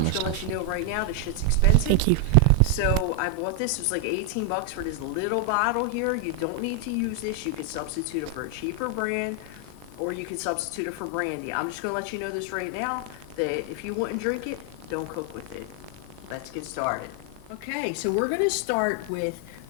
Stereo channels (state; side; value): different; both; correlation 0.00